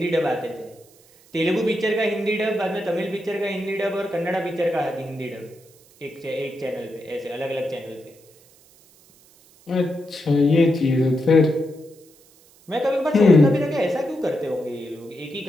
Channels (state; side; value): noise; right; hiss, 28 dB below the sound